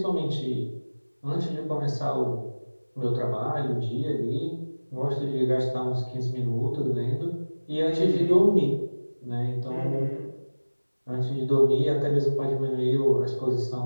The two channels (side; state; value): both; inverted; correlation -1.00